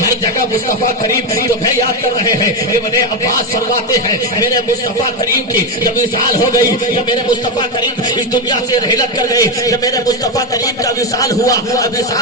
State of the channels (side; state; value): both; normal; correlation 0.10